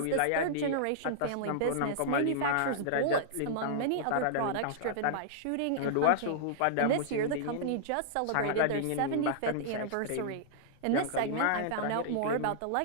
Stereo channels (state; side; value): different; both; correlation -0.01